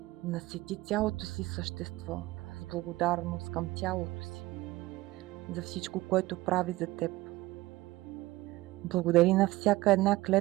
Насети цялото си същество с благодарност към тялото си за всичко, което прави за теб. Благодари на всяка една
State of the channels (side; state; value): left; quieter; 18.8 dB